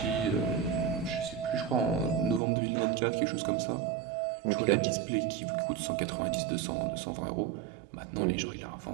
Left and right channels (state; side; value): drops out; left; at 2.4 s